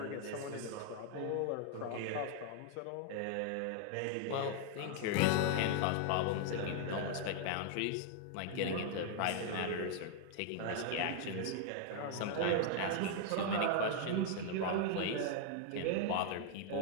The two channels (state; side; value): different; both; correlation 0.00